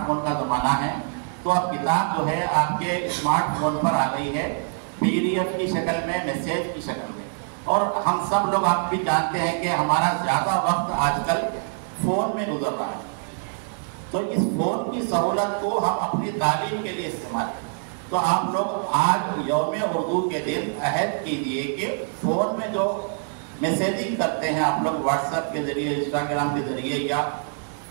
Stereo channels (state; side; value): silent; left; 62 dB below the other